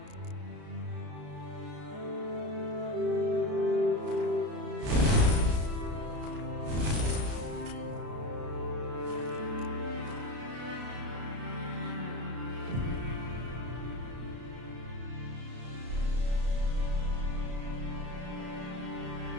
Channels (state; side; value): late; left; 33 ms